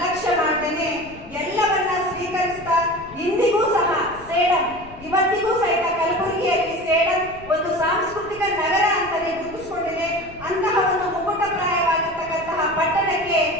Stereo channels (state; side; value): noise; left; rumble, 19 dB below the sound